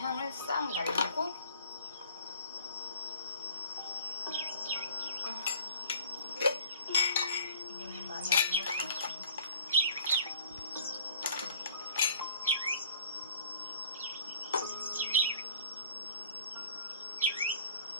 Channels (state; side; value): inverted; both; correlation -0.52